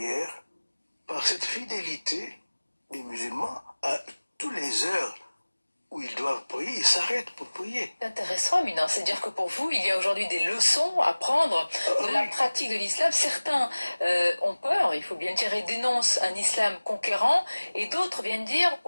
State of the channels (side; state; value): both; inverted; correlation -1.00